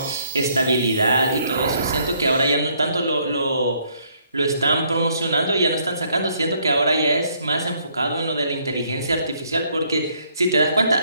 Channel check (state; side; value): inverted; both; correlation -0.68